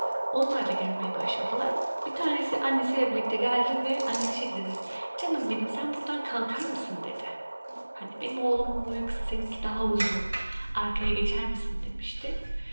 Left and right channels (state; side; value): inverted; both; correlation -1.00